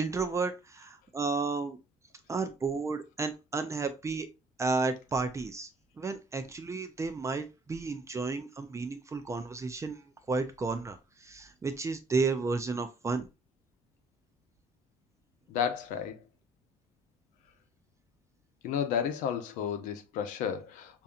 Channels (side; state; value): both; normal; correlation 0.53